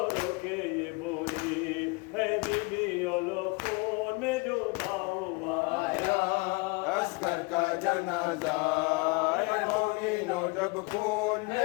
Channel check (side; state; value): right; quieter; 28.3 dB